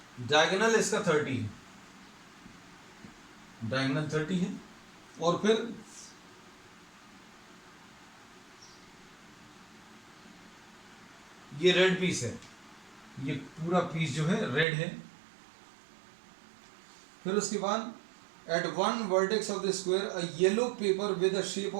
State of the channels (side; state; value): left; drops out; at 14.7 s